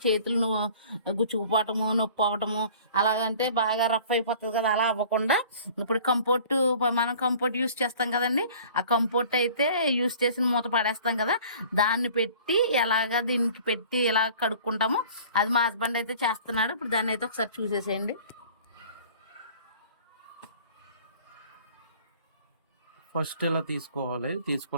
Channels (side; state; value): both; inverted; correlation -0.48